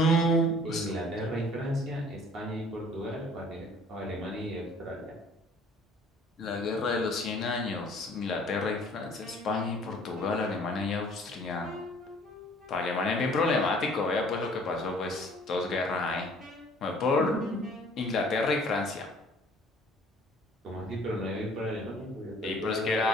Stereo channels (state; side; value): normal; both; correlation 0.54